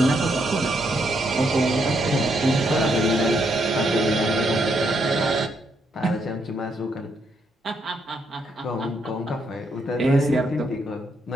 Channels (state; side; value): normal; both; correlation 0.77